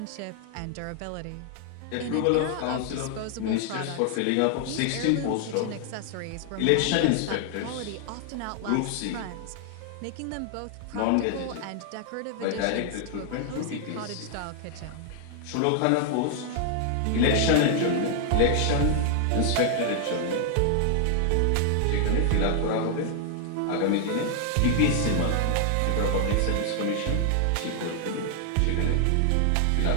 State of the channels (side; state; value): both; different; correlation 0.00